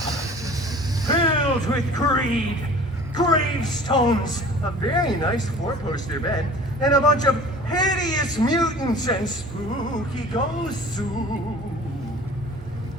filled with greed, gravestones, a very nice 4-poster bed, and a bunch of hideous mutants and spooky ghosts.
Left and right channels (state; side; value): normal; both; correlation 0.46